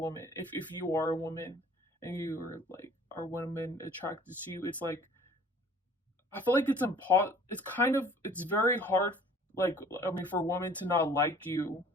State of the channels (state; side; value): normal; both; correlation 0.52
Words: if you are a woman and you are like, are women attracted to you, it's like I feel like it's kind of, it's very hard, like, I mean, for women to not like you